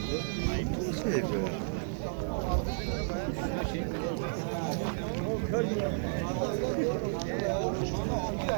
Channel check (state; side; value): silent; left; digital silence